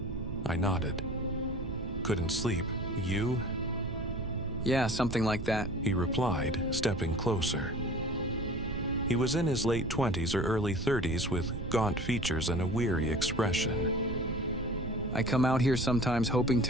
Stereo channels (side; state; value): right; noise; rumble, 8 dB below the sound